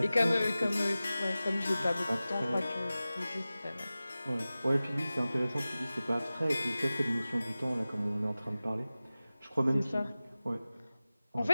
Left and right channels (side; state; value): both; inverted; correlation -0.96